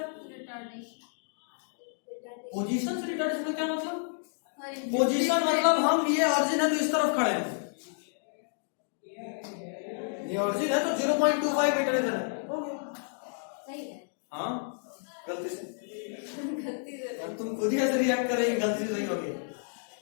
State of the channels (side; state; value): right; silent; digital silence